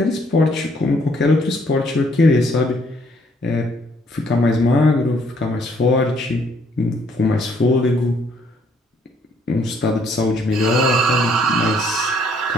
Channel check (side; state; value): both; normal; correlation 0.66